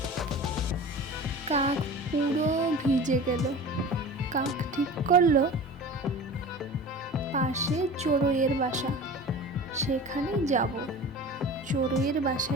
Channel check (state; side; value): normal; both; correlation 0.36